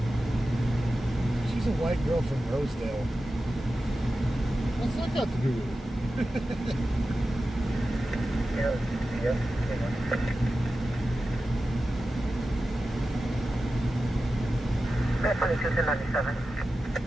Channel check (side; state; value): both; normal; correlation 0.93